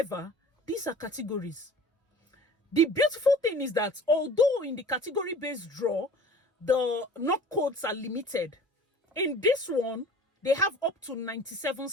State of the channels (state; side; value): normal; both; correlation 0.44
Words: these are categories. The beautiful thing is that although in the category-based draw, the knock codes are limited, in this one, they have up to 97